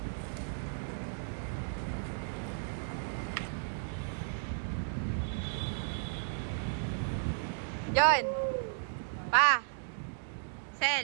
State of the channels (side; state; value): left; silent; digital silence